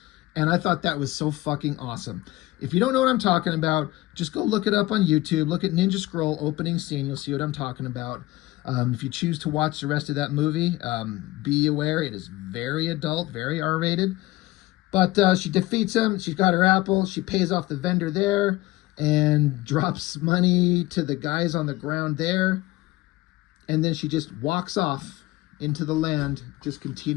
And I thought that was so fucking awesome. If you don't know what I'm talking about, just go look it up on YouTube. Look at Ninja Scroll opening scene. You'll see what I'm talking about. If you choose to watch the rest of that movie, be aware it is very adult, very R-rated. But she defeats him. She's got her apple. She pays off the vendor there and drops money to the guys on the ground there. And then she just walks off into the land, just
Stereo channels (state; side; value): quieter; right; 18.5 dB